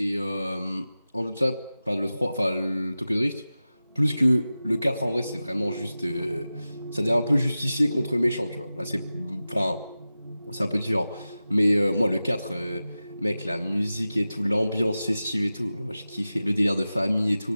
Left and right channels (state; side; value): inverted; both; correlation -0.95